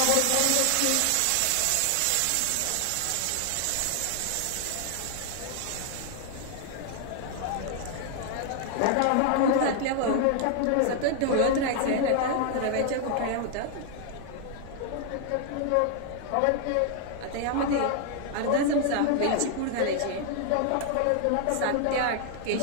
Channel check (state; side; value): different; both; correlation 0.00